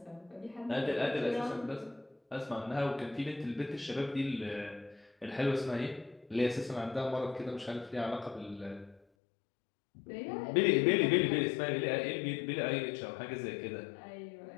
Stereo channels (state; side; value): drops out; right; at 9.0 s